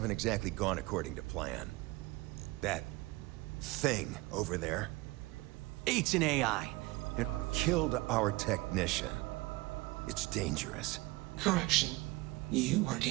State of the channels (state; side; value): quieter; left; 21.4 dB